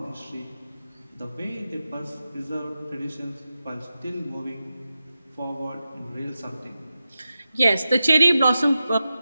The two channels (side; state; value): both; inverted; correlation -0.91